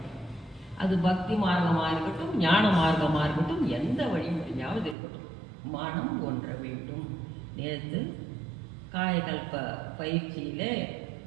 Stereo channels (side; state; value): left; drops out; at 5.0 s